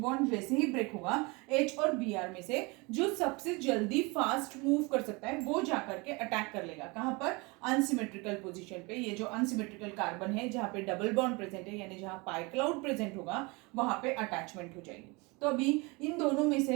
जैसे ही ब्रेक होगा H और Br में से जो सबसे जल्दी फास्ट मूव कर सकता है वो जाकर के अटैक कर लेगा, कहां पर, अनसिमेट्रिकल पोजीशन पे। ये जो अनसिमेट्रिकल कार्बन है जहां पे डबल बॉन्ड प्रेजेंट है, यानी जहां पाई क्लाउड प्रेजेंट होगा वहां पे अटैचमेंट हो जाएगी। तो अभी इन दोनों में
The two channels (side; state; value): left; quieter; 26.9 dB